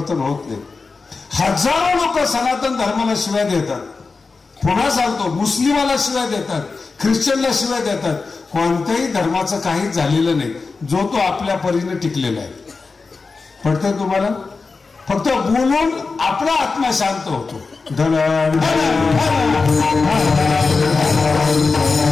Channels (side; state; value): right; quieter; 4.3 dB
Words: होत नाही. हजारो लोक सनातन धर्माला शिव्या देतात. पुन्हा सांगतो, मुस्लिमाला शिव्या देतात, ख्रिश्चनला शिव्या देतात. कोणत्याही धर्माचं काहीच झालेलं नाही, जो तो आपल्या परीने टिकलेला आहे. पडतंय तुम्हाला? फक्त बोलून आपला आत्मा शांत होतो.